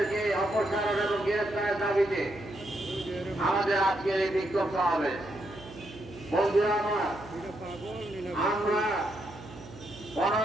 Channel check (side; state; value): right; noise; hum, 17 dB below the sound